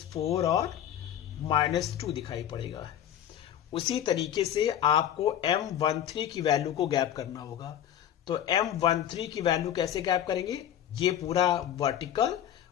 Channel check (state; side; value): quieter; right; 10.6 dB